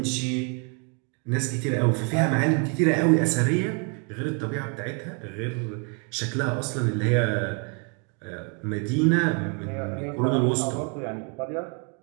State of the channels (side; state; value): left; quieter; 35.4 dB